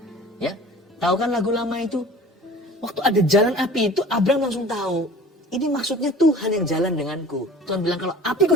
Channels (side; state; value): both; normal; correlation 0.44